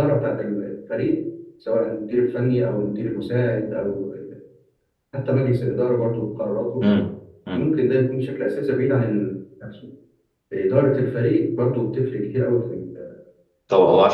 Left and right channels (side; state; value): both; identical; correlation 1.00